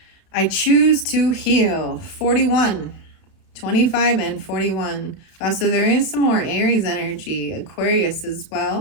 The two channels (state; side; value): late; right; 31 ms